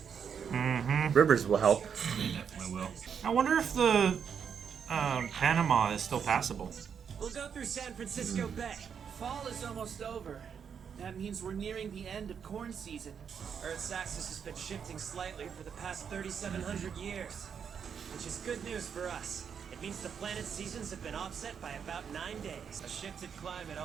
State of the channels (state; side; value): quieter; left; 7.2 dB